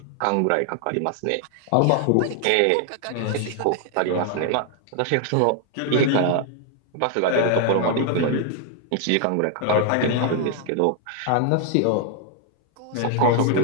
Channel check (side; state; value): both; different; correlation 0.00